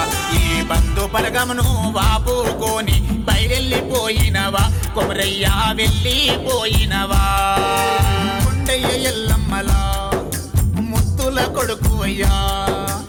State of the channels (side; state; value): both; identical; correlation 1.00